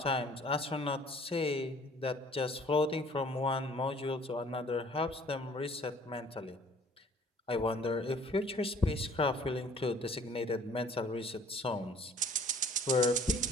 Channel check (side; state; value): both; normal; correlation 0.54